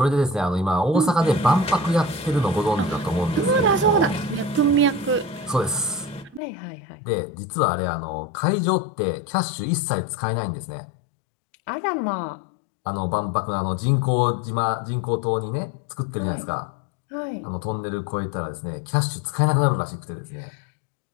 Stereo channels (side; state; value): right; drops out; at 6.4 s